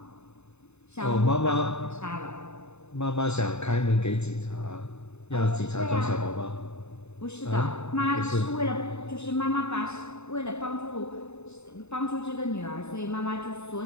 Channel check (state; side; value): late; right; 0.81 ms